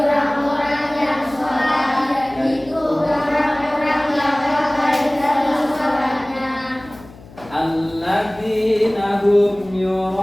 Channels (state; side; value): noise; left; hum, 21 dB below the sound